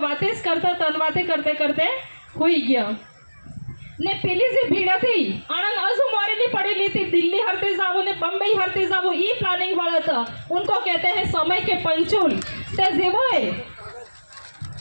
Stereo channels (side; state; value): both; inverted; correlation -1.00